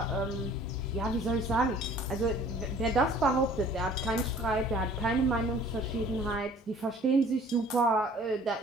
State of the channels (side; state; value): both; normal; correlation 0.51